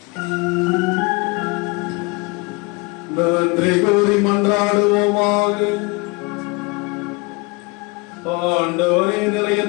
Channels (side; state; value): right; quieter; 27.2 dB